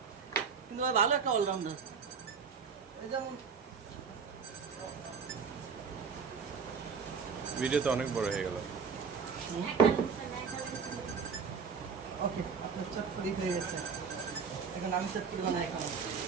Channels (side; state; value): left; quieter; 5.9 dB